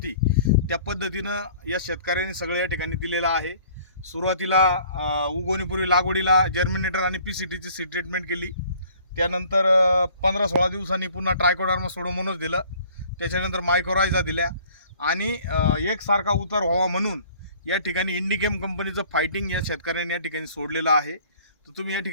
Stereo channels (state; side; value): inverted; both; correlation -0.53